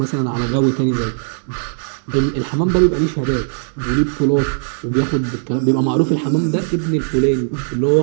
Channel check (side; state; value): left; silent; digital silence